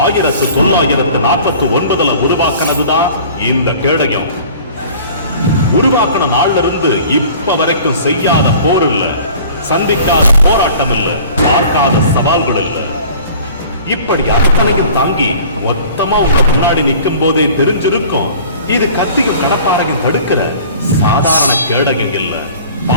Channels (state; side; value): inverted; both; correlation -0.46